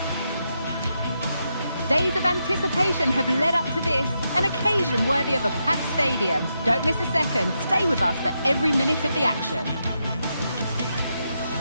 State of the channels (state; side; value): inverted; both; correlation -0.84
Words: Days of anticipation have led up to this, an occasion worthy of a packed stadium. Don't miss a second. Stay with us for every minute of the action.